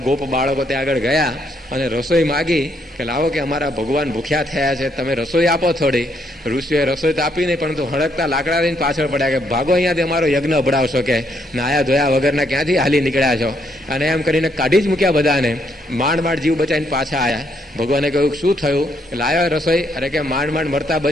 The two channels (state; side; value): normal; both; correlation 0.73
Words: ગોપ બાળકો ત્યાં આગળ ગયા અને રસોઈ માગી કે લાવો કે અમારા ભગવાન ભૂખ્યા થયા છે, તમે રસોઈ આપો થોડી. ઋષિઓએ રસોઈ તો આપી નહીં, પરંતુ હળકતા લાકડા લઈને પાછળ પડ્યા કે ભાગો અહીંયાથી અમારો યજ્ઞ અભડાવશો, કે નાયા ધોયા વગરના ક્યાંથી હાલી નીકળ્યા છો. અને એમ કરીને કાઢી જ મૂક્યા બધાને. માંડ માંડ જીવ બચાવીને પાછા આવ્યા. ભગવાને કહ્યું શું થયું? લાવ્યો રસોઈ? અરે કે માંડ માંડ મરતા